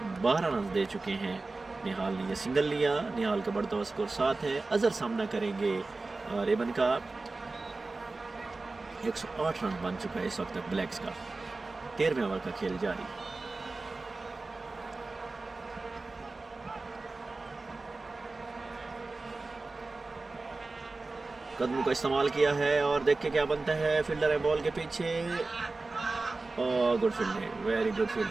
12 रन दे चुके हैं। निहाल ने ये सिंगल लिया। निहाल का बढ़ता हुआ स्कोर 7 है। अजहर सामना करेंगे रेबन का। 108 रन बन चुका है इस वक्त तक ब्लैक्स का। 13वें ओवर का खेल जारी। कदमों का इस्तेमाल किया है और देखिए क्या बनता है। फील्डर है बॉल के पीछे। और good fielding, very good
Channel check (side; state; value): left; quieter; 3.5 dB